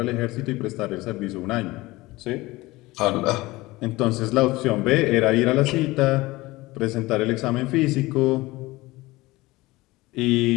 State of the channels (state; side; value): quieter; right; 20.2 dB